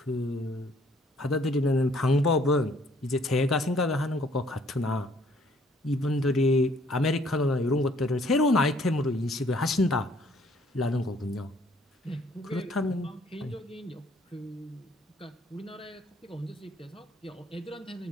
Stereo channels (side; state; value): both; normal; correlation 0.62